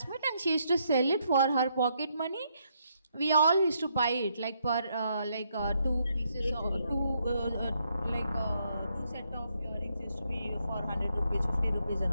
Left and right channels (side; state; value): both; inverted; correlation -0.75